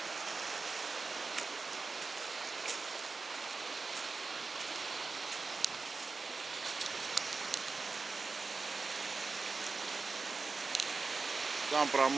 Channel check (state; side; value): quieter; left; 4.2 dB